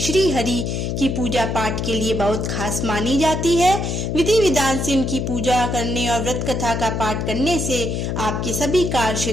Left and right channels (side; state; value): left; noise; hum, 1 dB below the sound